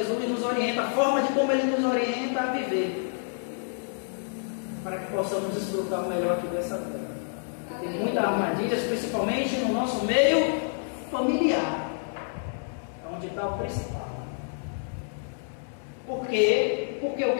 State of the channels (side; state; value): right; silent; 59 dB below the other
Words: nos orienta, a forma de como Ele nos orienta a viver, para que possamos desfrutar o melhor aqui dessa vida. Tem muitas armadilhas, principalmente no nosso meio familiar, é onde está o principal. Por quê? Porque o